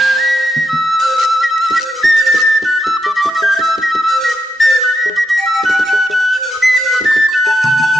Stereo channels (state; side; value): normal; both; correlation 0.82